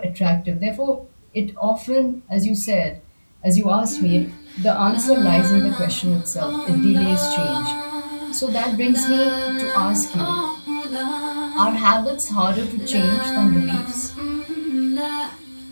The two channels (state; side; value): inverted; both; correlation -1.00